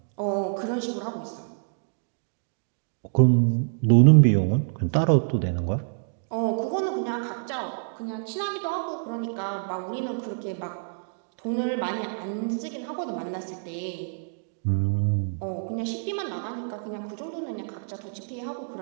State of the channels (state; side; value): silent; left; digital silence